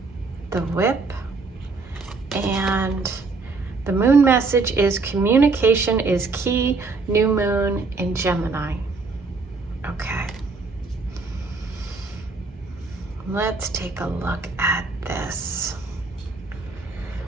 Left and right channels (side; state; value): left; quieter; 4.0 dB